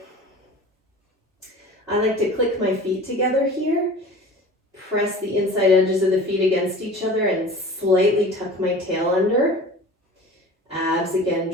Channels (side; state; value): both; normal; correlation 0.40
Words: I like to click my feet together here. Press the inside edges of the feet against each other and slightly tuck my tail under. Abs again